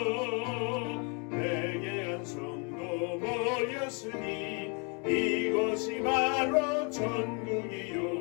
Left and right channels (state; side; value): quieter; right; 35.1 dB